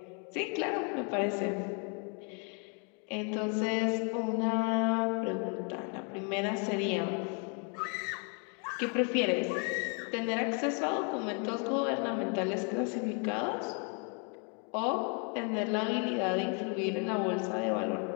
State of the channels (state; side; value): quieter; right; 38.2 dB